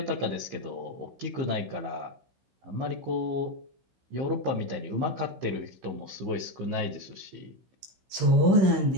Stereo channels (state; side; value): late; left; 16 ms